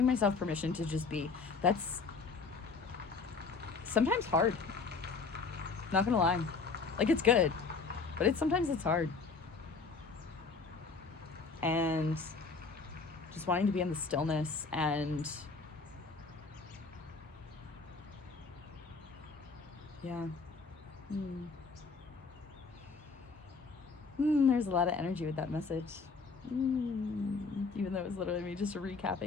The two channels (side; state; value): right; quieter; 4.6 dB